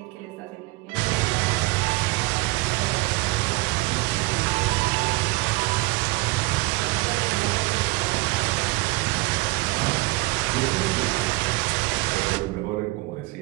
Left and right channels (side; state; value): left; quieter; 22.5 dB